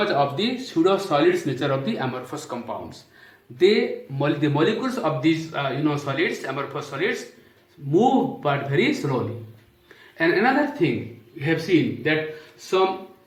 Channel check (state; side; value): identical; both; correlation 1.00